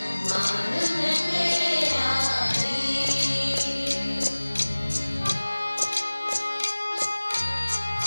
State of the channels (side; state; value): both; inverted; correlation -1.00